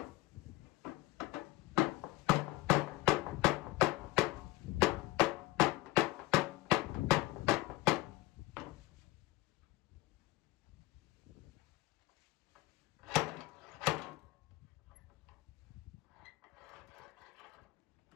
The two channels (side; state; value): right; quieter; 19.0 dB